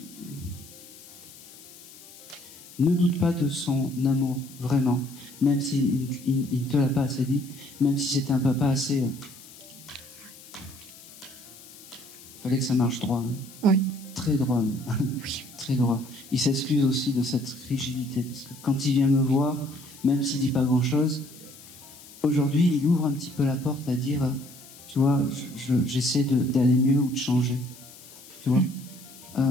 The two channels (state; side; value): noise; left; hiss, 20 dB below the sound